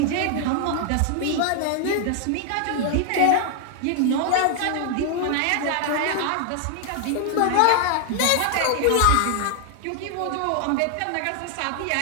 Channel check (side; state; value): both; different; correlation 0.00